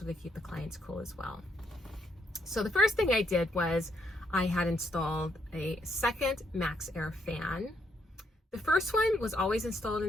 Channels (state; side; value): normal; both; correlation 0.75